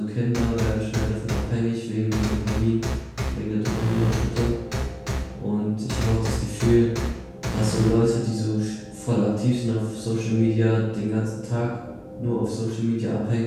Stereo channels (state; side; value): identical; both; correlation 1.00